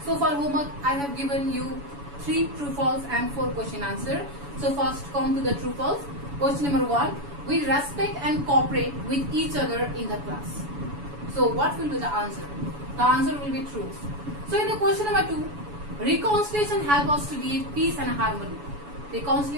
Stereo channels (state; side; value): late; left; 7.0 ms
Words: So for homework, I have given you 3 true false and 4 question answer. So first come to the true false. Question number 1, we respect and cooperate with each other in the class. So what will be the answer? The answer will be true. So in the question number 2, reconciliation help us to live peace and harmony.